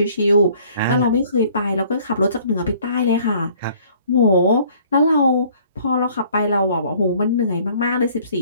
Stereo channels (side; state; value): both; inverted; correlation -0.57